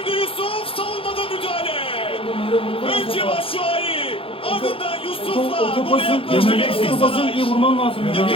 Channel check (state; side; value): late; right; 0.27 ms